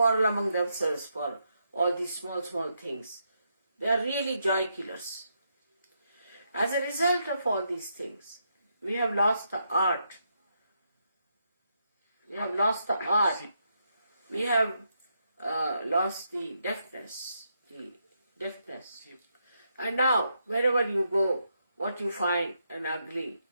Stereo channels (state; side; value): inverted; both; correlation -0.80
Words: among themselves for all these small things, they are really joy killers. As a result of all these things, we have lost the art. We have lost the art. We have lost the deafness. And now, wherever you go, what you find an ugly